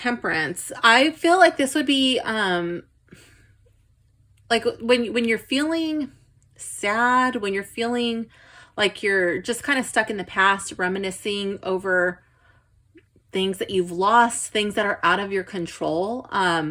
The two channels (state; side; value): identical; both; correlation 1.00